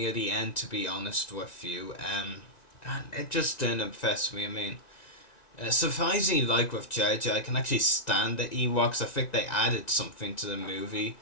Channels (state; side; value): late; right; 1.9 ms